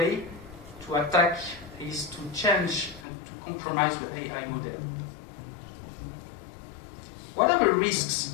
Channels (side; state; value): right; drops out; at 3.1 s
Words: to attack is to change and to compromise the AI model. What are the risks?